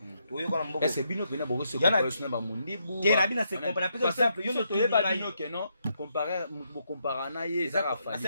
to yo kona mboko est-ce bino pena boko se comparer ba mundibu te na bina se comparer par exemple yo no to yeba bino ke non comparer bo comparer na ye za ka fa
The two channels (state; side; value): inverted; both; correlation -0.78